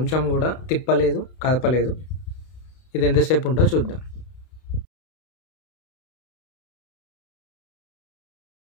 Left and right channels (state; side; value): late; right; 32 ms